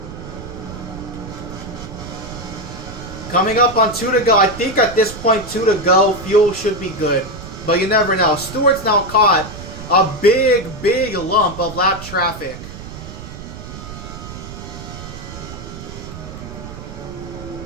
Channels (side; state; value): right; noise; rumble, 12 dB below the sound